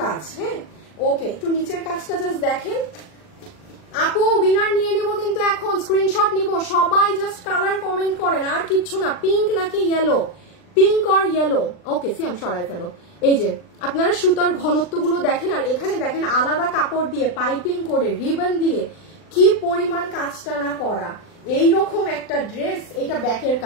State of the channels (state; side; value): late; right; 39 ms